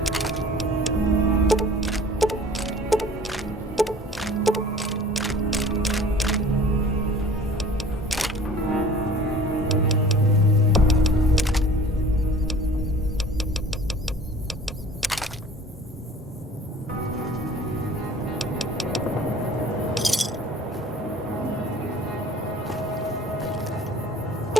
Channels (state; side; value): normal; both; correlation 0.47